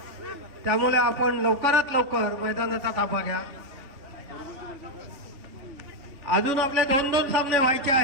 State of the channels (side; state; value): left; late; 3.5 ms